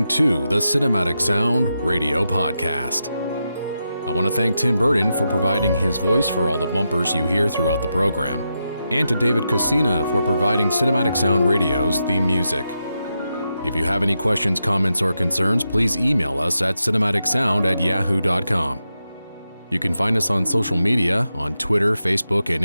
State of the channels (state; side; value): inverted; both; correlation -0.87